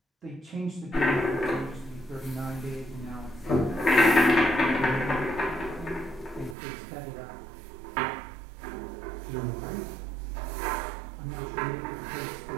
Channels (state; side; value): drops out; left; at 6.6 s